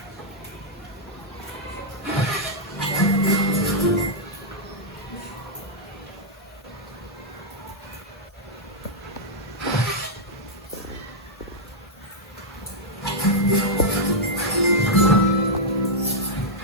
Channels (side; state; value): both; normal; correlation -0.06